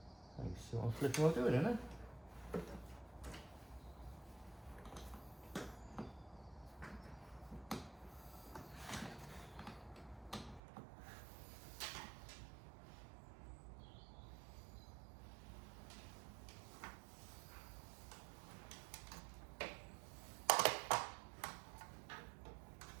You see what I'm flipping while doing, isn't it?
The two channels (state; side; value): drops out; left; at 10.6 s